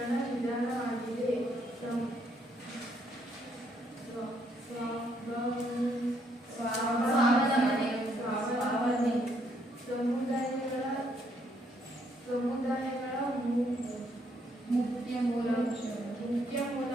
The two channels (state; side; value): normal; both; correlation 0.71